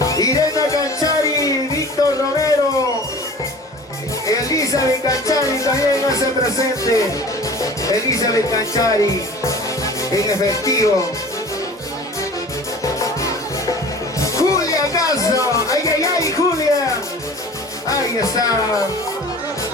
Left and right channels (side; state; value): both; normal; correlation 0.42